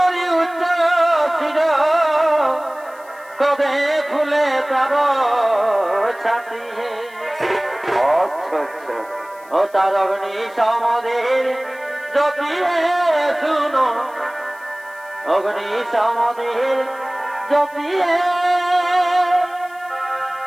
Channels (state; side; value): noise; left; hiss, 27 dB below the sound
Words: উচ্চ শির, কদে ফুলে তার ছাতি হে। আচ্ছা আচ্ছা, ও তার অগ্নি সমদের জপিয়ে শুনো, অগ্নি সমদের জপিয়ে